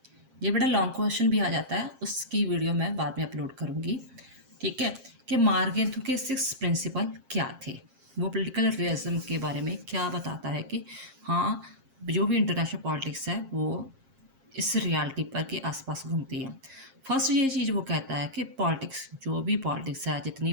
ये बड़ा long question भी आ जाता है, उसकी वीडियो मैं बाद में अपलोड करूंगी। ठीक है, कि मार्गेंथु के सिक्स प्रिंसिपल क्या थे, वो पॉलिटिकल रियलिज्म के बारे में क्या बताता है कि हाँ, जो भी इंटरनेशनल पॉलिटिक्स है वो इस रियलिटी पर के आसपास घूमती है। फर्स्ट ये चीज़ वो कहता है कि पॉलिटिक्स, जो भी पॉलिटिक्स है, जितनी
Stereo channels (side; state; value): left; late; 7.5 ms